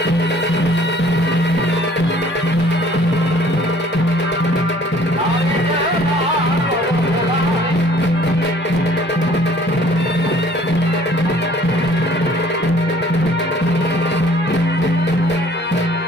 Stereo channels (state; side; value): normal; both; correlation 0.55